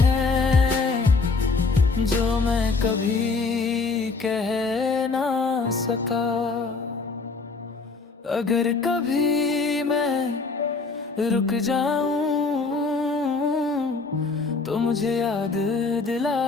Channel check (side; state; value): right; quieter; 4.2 dB